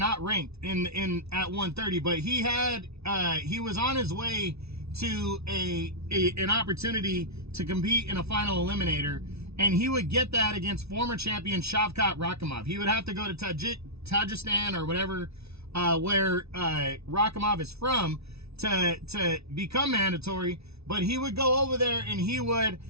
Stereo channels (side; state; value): left; late; 0.80 ms